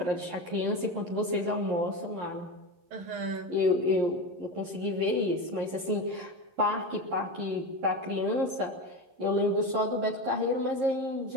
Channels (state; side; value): late; left; 11 ms